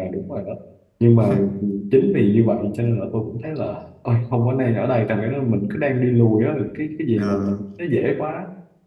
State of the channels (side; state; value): both; identical; correlation 1.00